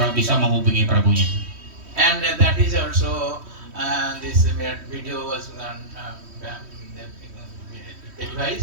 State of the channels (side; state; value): left; late; 3.1 ms